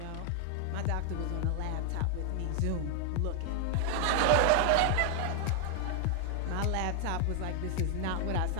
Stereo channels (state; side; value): different; both; correlation 0.00